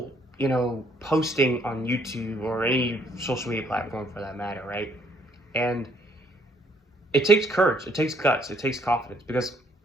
posting on YouTube or any social media platform for that matter, right? And it takes courage, it takes guts, it takes confidence because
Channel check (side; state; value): both; normal; correlation 0.65